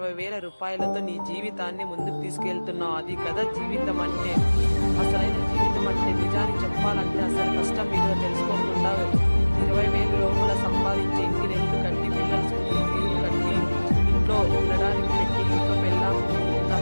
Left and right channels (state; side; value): inverted; both; correlation -1.00